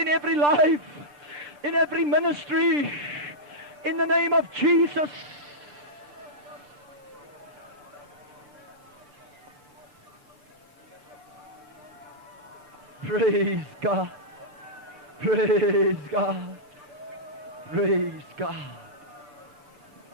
every life, in every ministry, in the name of Jesus. Praise God. Praise God. Praise God.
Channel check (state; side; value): late; left; 6.8 ms